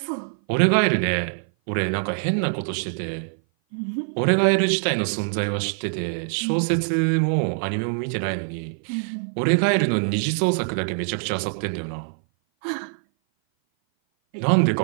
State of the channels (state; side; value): silent; left; 57 dB below the other